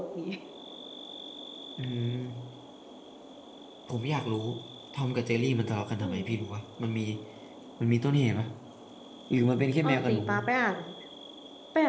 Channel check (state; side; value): identical; both; correlation 1.00